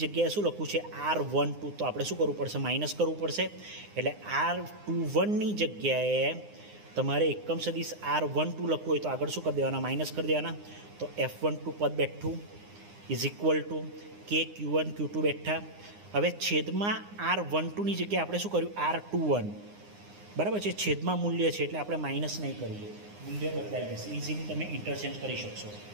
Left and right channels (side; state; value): left; late; 9.7 ms